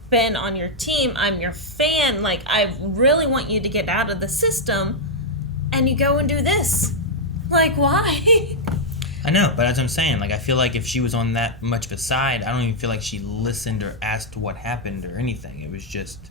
been on your team. I'm your fan. Like, I really want you to get out of the system. And you go and do this. Like, why? I know, but as I'm saying, like, I feel like if she was on that much of a side, I don't even feel like she listened or asked what happened or anything. It was just,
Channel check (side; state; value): both; normal; correlation -0.04